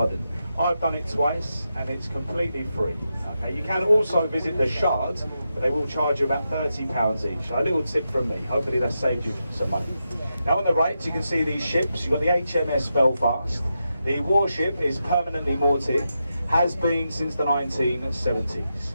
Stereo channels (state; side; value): inverted; both; correlation -0.87